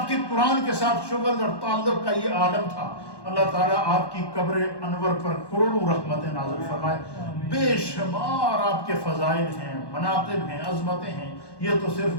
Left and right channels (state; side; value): late; right; 1.1 ms